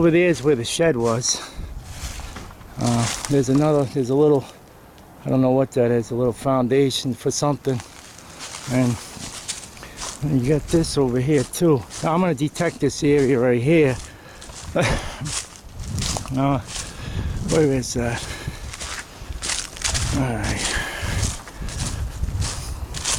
there is where the shed was. There's a little, I don't know what that is, a little foundation for something. And you got this over here too. Now I'm going to detect this area right here. Where is that? Alright.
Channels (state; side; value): identical; both; correlation 1.00